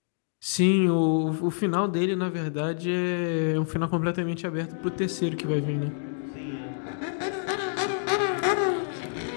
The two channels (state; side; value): silent; right; digital silence